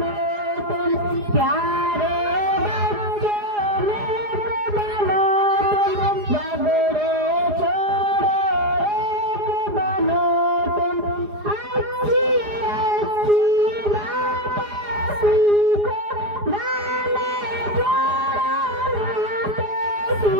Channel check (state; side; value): late; left; 4.8 ms